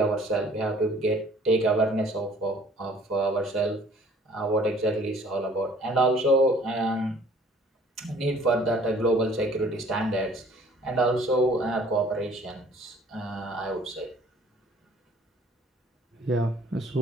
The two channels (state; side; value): normal; both; correlation 0.55